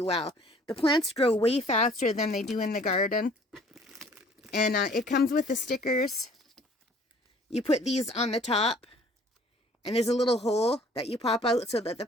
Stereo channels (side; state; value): both; normal; correlation 0.55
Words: well. The plants grow way faster than they do in the garden. And it comes with the stickers. You put these on the top. And there's a little hole that you pop out so that the